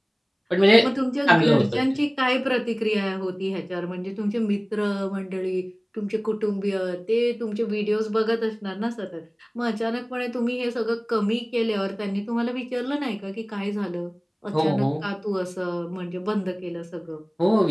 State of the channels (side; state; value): both; identical; correlation 1.00